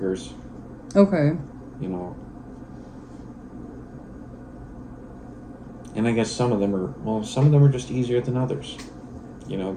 Okay. You know, and I guess some of them are just easier than others.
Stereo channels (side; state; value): both; identical; correlation 1.00